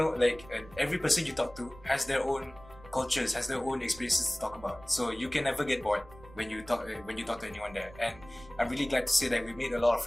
like every person you talk to has their own cultures, has their own experiences to talk about, so you can never get bored when you talk to anyone there. And I'm really glad to say that we made a lot of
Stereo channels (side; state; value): right; noise; rumble, 20 dB below the sound